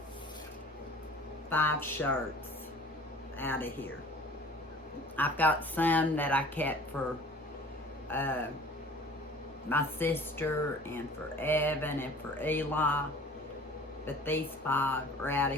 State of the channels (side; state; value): both; normal; correlation 0.46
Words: 5 shirts out of here. I've got some that I kept for my sister and for Evan and for Eli, but these 5 are out